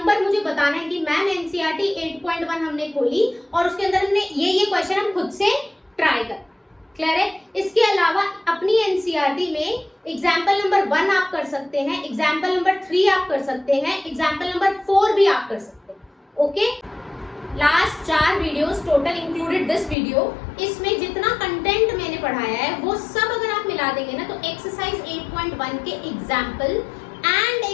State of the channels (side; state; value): right; drops out; at 20.0 s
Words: मुझे बताना है कि मैम एनसीईआरटी 8.1 हमने खोली और उसके अंदर हमने ये क्वेश्चन हम खुद से ट्राई कर। क्लियर है? इसके अलावा अपनी एनसीईआरटी में एग्जाम्पल नंबर 1 आप कर सकते हैं, एग्जाम्पल नंबर 3 आप कर सकते हैं, एग्जाम्पल नंबर 4 भी आप कर सकते हैं। Okay, last 4 videos total included this video, इसमें जितना कंटेंट मैंने पढ़ाया है वो सब अगर आप मिला देंगे ना तो एक्सरसाइज 8.1 के एग्जाम्पल एंड